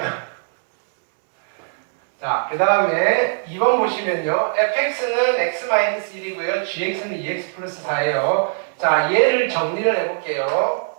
자, 그 다음에 2번 보시면요. fx는 x-1이고요. gx는 2x 플러스 4예요. 자, 얘를 정리를 해볼게요.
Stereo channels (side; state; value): left; silent; digital silence